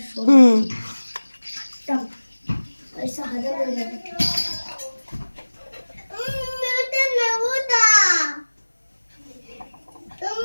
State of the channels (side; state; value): both; inverted; correlation -1.00